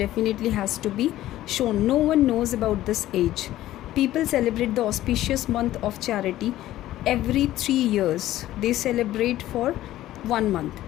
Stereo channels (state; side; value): quieter; right; 14.4 dB